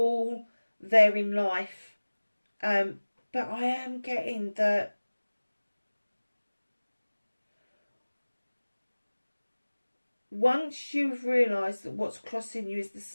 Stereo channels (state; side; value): inverted; both; correlation -1.00